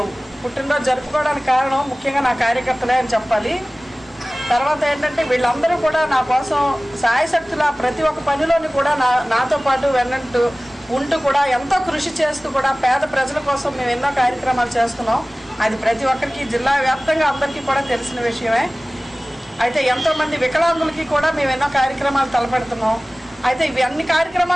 పుట్టినరోజు జరుపుకోవడానికి కారణం ముఖ్యంగా నా కార్యకర్తలే అని చెప్పాలి. తర్వాత ఏంటంటే వీళ్ళందరూ కూడా నా కోసం సాయశక్తుల ప్రతి ఒక్క పనిలోని కూడా నాతో పాటు వెన్నంటూ ఉంటూ కూడా ఎంతో కృషి చేస్తూ కూడా పేద ప్రజల కోసం మేము ఎన్నో కార్యక్రమాలు చేస్తున్నాం. అది ప్రతి ఒక్కరికి జిల్లా వ్యాప్తంగా అందరికీ కూడా తెలిసిన విషయమే. అయితే ఎంతోమంది వికలాంగులకి కూడా మేము ఎన్నో కార్యక్రమాలు తలపెడుతున్నాం. అయితే ఇవి అన్ని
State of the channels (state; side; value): normal; both; correlation 0.98